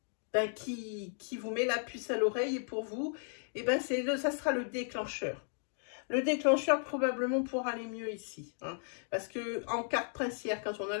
vous met la puce à l'oreille et pour vous, ça sera le déclencheur. Le déclencheur probablement pour aller mieux ici. Hein, parce que en carte princière, quand on a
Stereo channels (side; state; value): right; silent; 54 dB below the other